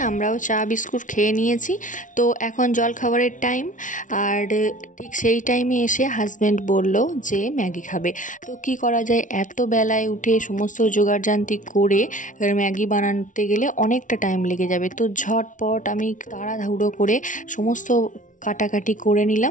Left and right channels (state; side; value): late; right; 0.37 ms